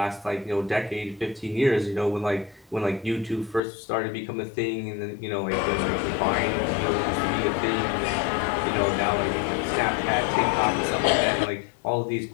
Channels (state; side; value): drops out; right; at 3.6 s